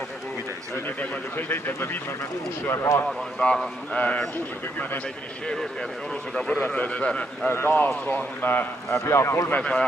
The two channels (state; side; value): normal; both; correlation 0.76